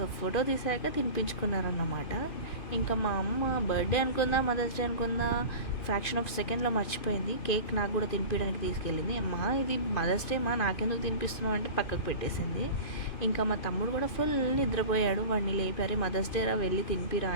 ఫోటో తీసాక తినిపించుకున్నారన్నమాట. ఇంకా మా అమ్మ బర్త్డే అనుకుందా మదర్స్ డే అనుకుందా ఫ్రాక్షన్ ఆఫ్ సెకండ్లో మర్చిపోయింది. కేక్ నాకు కూడా తినిపించడానికి తీసుకెళ్ళింది. అమ్మా ఇది మదర్స్ డే మా నాకెందుకు తినిపిస్తున్నావు అంటే పక్కకు పెట్టేసింది. ఇంకా మా తమ్ముడు కూడా ఫుల్ నిద్రపోయాడు. వాడిని లేపారు, మదర్స్ డే రా వెళ్ళి తినిపిరా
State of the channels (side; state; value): right; late; 2.5 ms